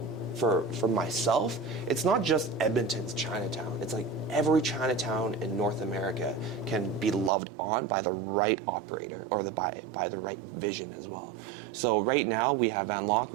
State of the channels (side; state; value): left; drops out; at 7.3 s